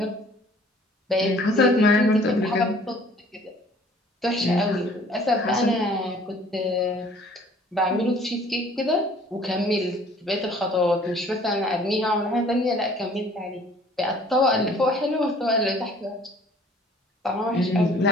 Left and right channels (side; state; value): both; normal; correlation 0.54